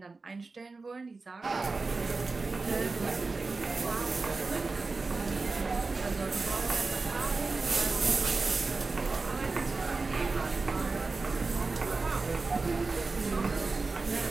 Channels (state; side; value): quieter; left; 3.9 dB